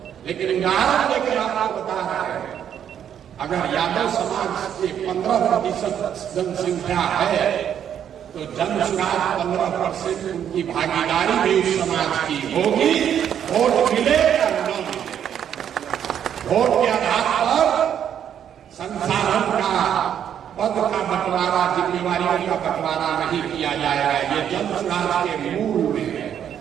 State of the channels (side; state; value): left; quieter; 9.2 dB